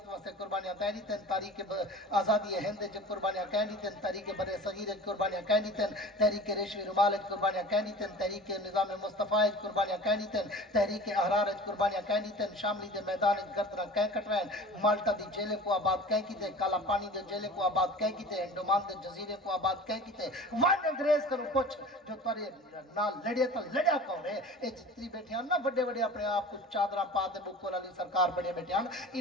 واسطے قربانیاں کہنی تن, تاریخ آزادی ہند چ قربانیاں کہنی تن, تاریخ برے صغیر قربانیاں کہنی تن, تحریک ریشمی رومال قربانیاں کہنی تن, تحریک نظام مصطفیٰ قربانیاں کہنی تن, تحریک احرار قربانیاں کہنی تن, شاملی دے میدان گردنا کہہ کٹوین, مالٹا دی جیلے کو آباد کہہ کی تے, کالا پانی دے جیلے کو آباد کہہ کی تے, انڈومان دے جزیرے کو آباد کہہ کی تے. ون انگریز کرو پوچھ جو تارے نال لڑے تا لڑیا کون ہے, اے جتنی بیٹھے ہیں نا بڑے بڑے اپنے آپ کو چادرہ پاتے بکول علی سرکار بڑے بیٹھے ہیں,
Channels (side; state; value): both; normal; correlation 0.40